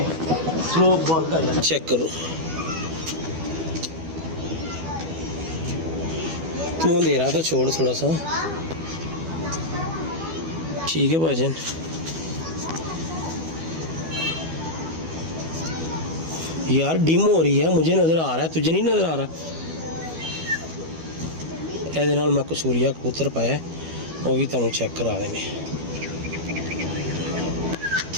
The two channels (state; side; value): late; left; 12 ms